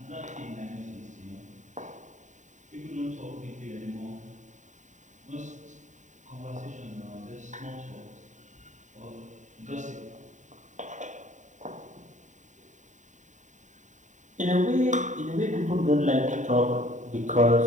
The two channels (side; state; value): left; late; 0.36 ms